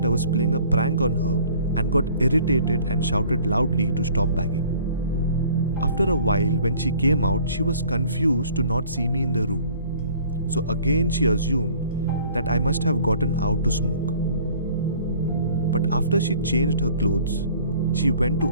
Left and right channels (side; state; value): both; inverted; correlation -0.52